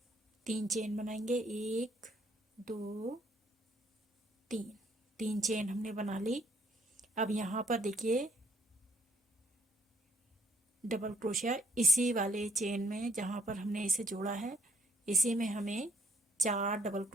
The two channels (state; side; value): normal; both; correlation 0.67